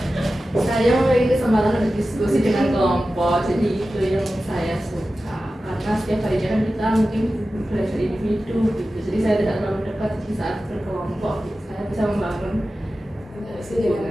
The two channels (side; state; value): both; normal; correlation 0.94